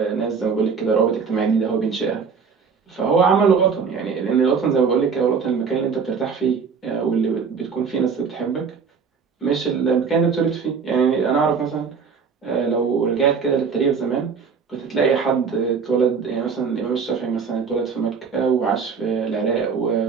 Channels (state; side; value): quieter; left; 5.8 dB